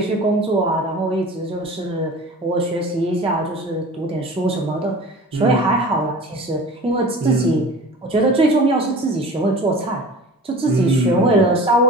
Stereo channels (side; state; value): both; normal; correlation 0.40